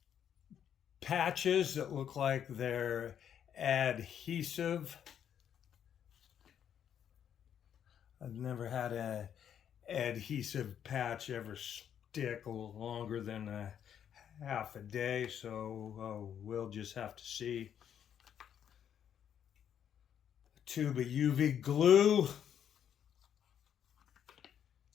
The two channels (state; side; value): quieter; right; 9.1 dB